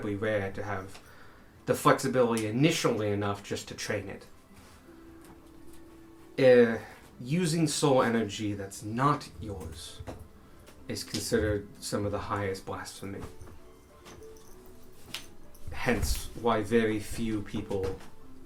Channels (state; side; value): identical; both; correlation 1.00